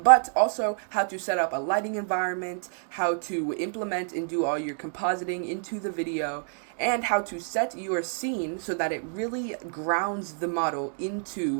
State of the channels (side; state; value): left; silent; 59 dB below the other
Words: also how to set up a lighting environment, how to implement and do all your compositing into the video, and how to set your scene so that it really grounds the model